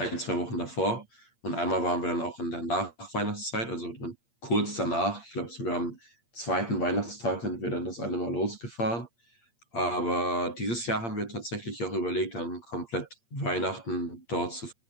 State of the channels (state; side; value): late; right; 8.6 ms